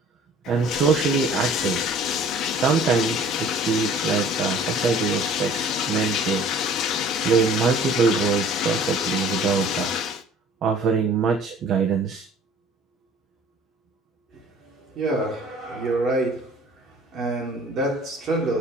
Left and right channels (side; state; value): both; normal; correlation 0.50